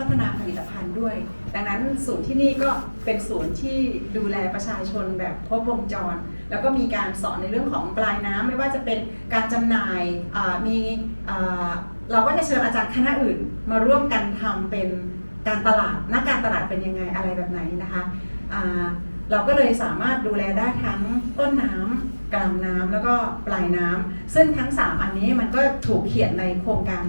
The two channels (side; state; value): both; inverted; correlation -1.00